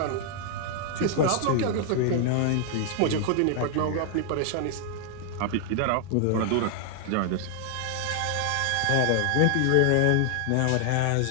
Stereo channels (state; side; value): different; both; correlation 0.00